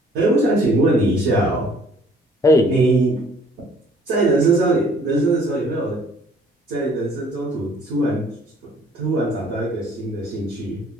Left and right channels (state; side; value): normal; both; correlation 0.58